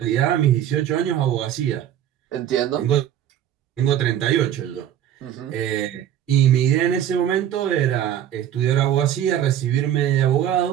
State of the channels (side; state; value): left; quieter; 10.9 dB